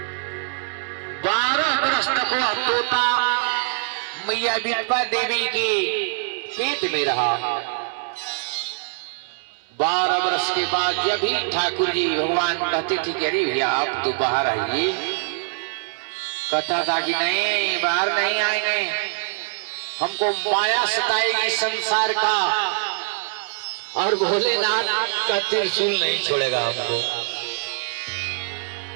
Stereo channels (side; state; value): left; silent; 63 dB below the other